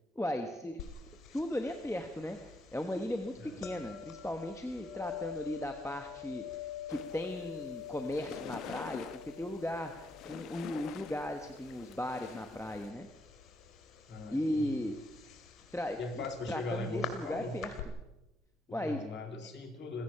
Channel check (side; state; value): both; normal; correlation 0.76